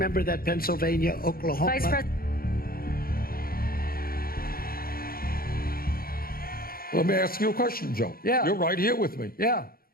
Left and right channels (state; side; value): late; right; 0.43 ms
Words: that, Pennsylvania, Oklahoma? Vice President. Let me ask you a question, Joe. Yeah. You're right here with me. Yeah.